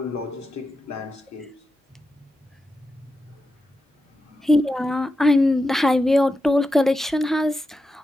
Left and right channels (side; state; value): both; normal; correlation 0.89